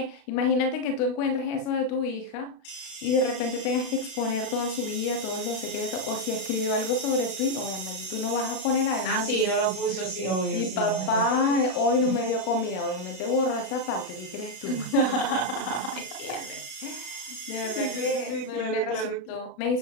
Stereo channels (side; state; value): right; late; 32 ms